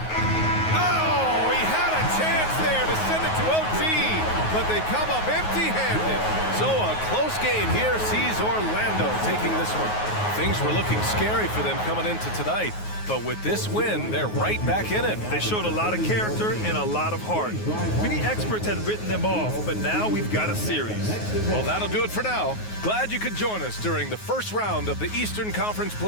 Oh, he had a chance there to send it to OT, but they come up empty-handed. So a close game here sees Orlando taking this one. Things were looking scary for them coming into tonight, but with this win, they're right back in it. They showed a lot of character and a lot of heart. Many experts had written them off, but now we've got a series. Well, that'll do it for now. Glad you could join us during the first round of the Eastern Conference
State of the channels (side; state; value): right; late; 9.4 ms